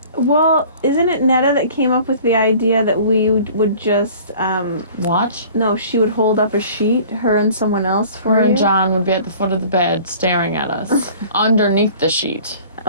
Well, isn't it Netta that came up with the idea that we would just Watch. no, she would hold up a sheet, her and someone else for Her you? and John would be at the foot of the bed staring at us underneath the sheet.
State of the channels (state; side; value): inverted; both; correlation -0.47